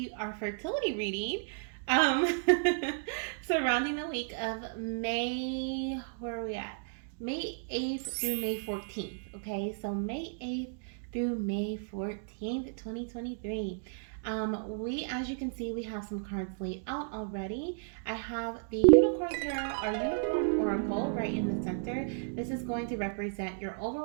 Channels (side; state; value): left; silent; digital silence